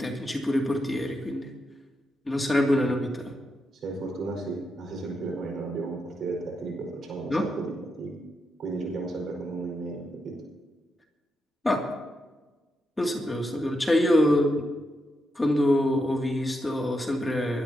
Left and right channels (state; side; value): normal; both; correlation 0.84